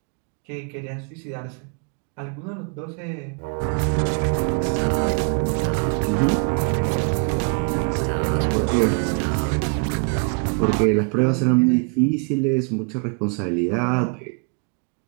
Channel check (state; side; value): quieter; left; 34.5 dB